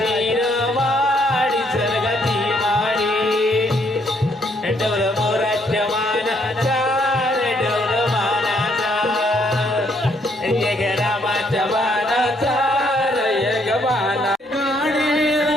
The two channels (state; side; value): normal; both; correlation 0.70